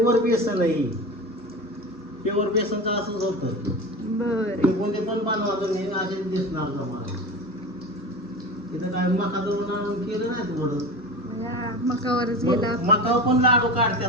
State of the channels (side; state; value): both; normal; correlation 0.29